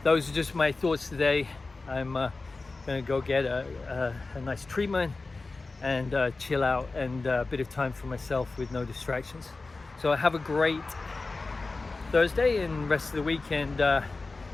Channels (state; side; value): quieter; right; 3.6 dB